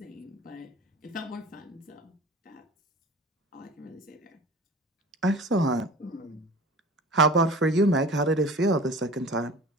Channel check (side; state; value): both; normal; correlation 0.40